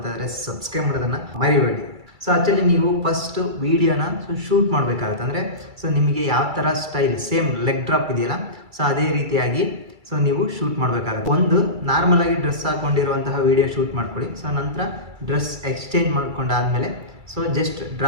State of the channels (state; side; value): late; left; 2.3 ms